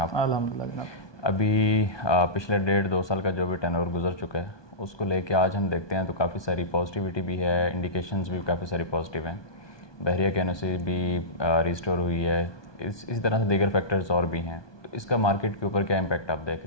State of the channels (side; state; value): right; late; 1.2 ms